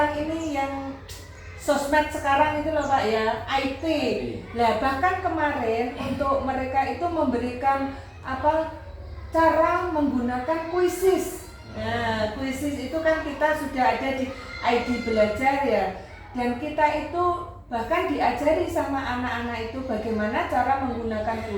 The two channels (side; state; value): both; identical; correlation 1.00